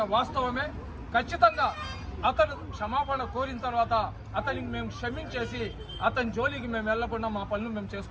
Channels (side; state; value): both; identical; correlation 1.00